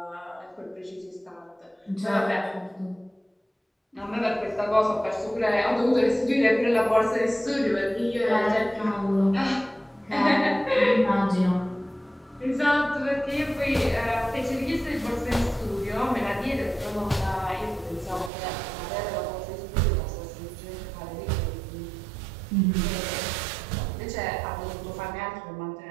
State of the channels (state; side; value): drops out; left; at 18.3 s